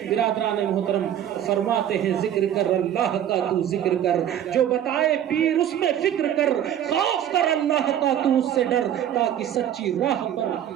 برادران محترم فرماتے ہیں ذکر کر اللہ کا تو ذکر کر، جو بتائے پیر اس میں فکر کر، خوف کر اللہ کا تو اس سے ڈر، تاکہ سچی راہ پر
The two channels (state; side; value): quieter; left; 10.5 dB